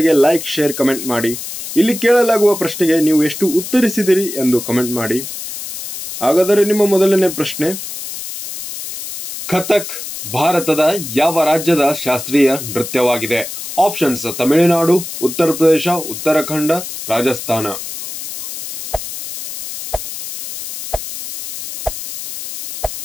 ಲೈಕ್, ಶೇರ್, ಕಮೆಂಟ್ ಮಾಡಿ. ಇಲ್ಲಿ ಕೇಳಲಾಗುವ ಪ್ರಶ್ನೆಗೆ ನೀವು ಎಷ್ಟು ಉತ್ತರಿಸಿದಿರಿ ಎಂದು ಕಮೆಂಟ್ ಮಾಡಿ. ಹಾಗಾದರೆ ನಿಮ್ಮ ಮೊದಲನೇ ಪ್ರಶ್ನೆ, ಕಥಕ್ ಭಾರತದ ಯಾವ ರಾಜ್ಯದ ಶಾಸ್ತ್ರೀಯ ನೃತ್ಯವಾಗಿದೆ? ಆಪ್ಷನ್ಸ್: ತಮಿಳುನಾಡು, ಉತ್ತರ ಪ್ರದೇಶ, ಉತ್ತರಾಖಂಡ, ರಾಜಸ್ಥಾನ.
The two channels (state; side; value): noise; left; hiss, 9 dB below the sound